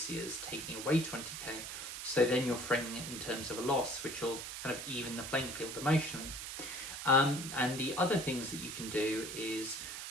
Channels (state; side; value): noise; right; hiss, 7 dB below the sound